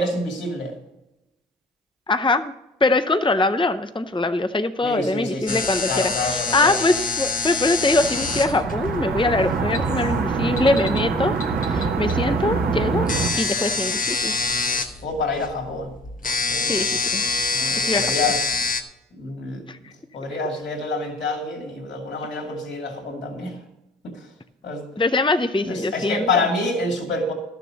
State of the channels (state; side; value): normal; both; correlation 0.48